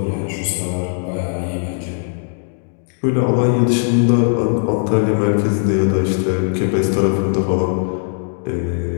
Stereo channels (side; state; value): right; silent; digital silence